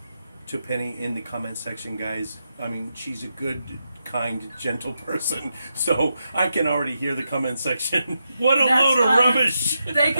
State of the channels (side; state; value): both; inverted; correlation -0.85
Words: to Penny in the comment section, guys. I mean, she's a good, kind, gentle person. So I can already hear the comment section. What a load of rubbish! They